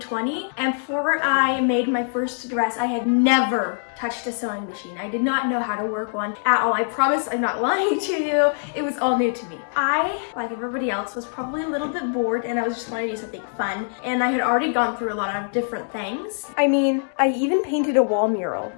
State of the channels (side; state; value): right; silent; digital silence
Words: and before I made my first dress, I had never touched a sewing machine. I did not know how to work one at all. I promise I'm not lying to you. It was all new to me. I, like everybody else, was probably a little bit bored and I was just wanting to do something fun, and I had already gone through a lot of different things. I mean, I even painted a wall mural.